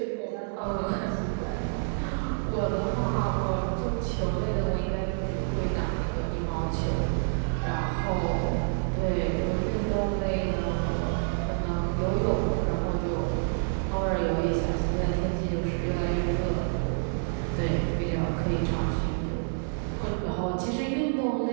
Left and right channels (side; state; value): left; silent; digital silence